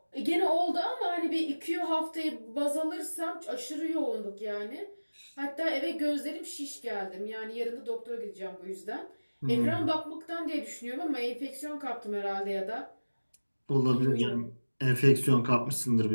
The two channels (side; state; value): both; inverted; correlation -1.00